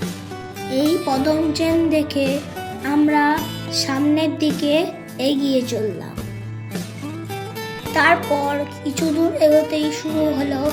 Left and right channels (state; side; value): identical; both; correlation 1.00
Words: এই পদম চেন দেখে আমরা সামনের দিকে এগিয়ে চললাম। তারপর কিছু দূর এগোতেই শুরু হলো